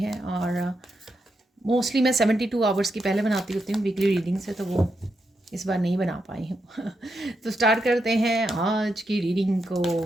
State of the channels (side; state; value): both; normal; correlation 0.84